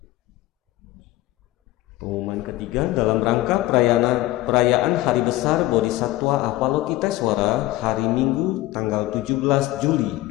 Pengumuman ketiga, dalam rangka perayaan Hari Besar Bodhisattva Avalokiteswara hari Minggu tanggal 17 Juli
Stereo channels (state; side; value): quieter; right; 17.1 dB